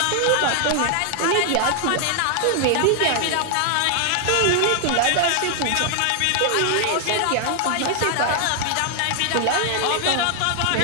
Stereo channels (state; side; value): different; both; correlation 0.00